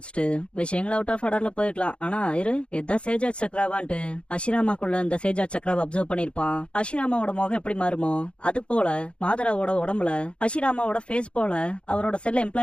விஷயங்கள் அவுட் ஆஃப் ஆர்டர்ல போயிருக்கலாம், ஆனா இதான் சேஜா சக்ராவான்ட்டு ஹஷிராமாக்குள்ள இந்த சேஜா சக்ராவை அப்சர்வ் பண்ணிருப்பான். ஹஷிராமாவோட முகம் எப்படி மாறுமோ அது போல மாதராவோட உடம்புல ஹஷிராமாவோட ஃபேஸ் போல அவரோட செல்ல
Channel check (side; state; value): right; late; 0.058 ms